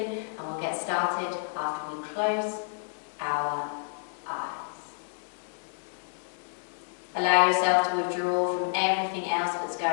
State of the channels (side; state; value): right; silent; digital silence